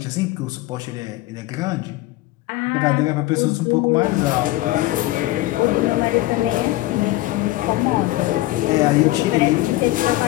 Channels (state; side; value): quieter; right; 17.8 dB